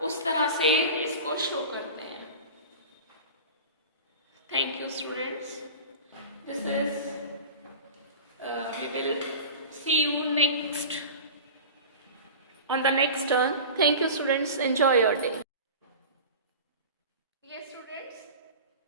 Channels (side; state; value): both; inverted; correlation -0.34